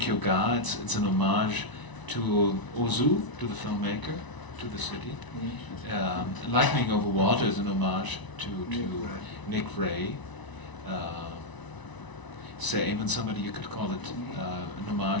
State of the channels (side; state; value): right; late; 1.0 ms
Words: Ga, it's an homage to Ozu, to the filmmaker, to the city. Lightning Over Water is an homage to Nick Ray. Say, even somebody you could call it an